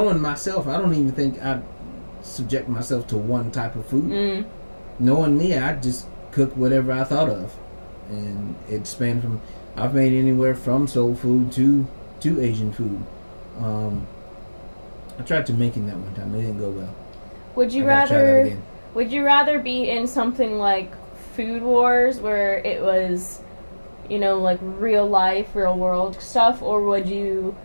myself, I don't even think I'd subject myself to one type of food. Knowing me, I'd just cook whatever I thought of, and it spanned from I've made anywhere from soul food to Asian food. I tried to making that one time. It didn't go well. Would you rather be in something like Food Wars where it was, like real life, real world stuff, or would you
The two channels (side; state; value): both; inverted; correlation -1.00